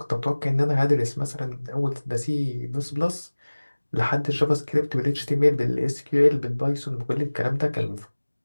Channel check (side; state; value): both; inverted; correlation -1.00